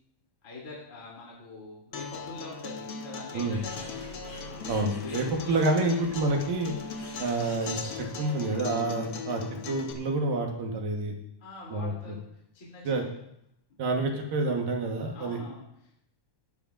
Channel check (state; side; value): late; left; 1.1 ms